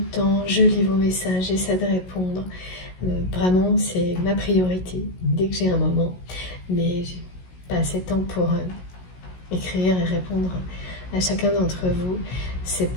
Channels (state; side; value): late; right; 16 ms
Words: temps, je lis vos messages, j'essaie de répondre. Vraiment, c'est ma priorité dès que j'ai un moment. Mais j'ai pas assez de temps pour écrire et répondre à chacun d'entre vous. C'est